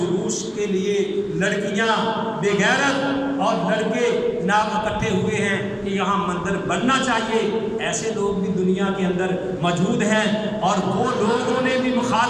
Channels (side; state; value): both; identical; correlation 1.00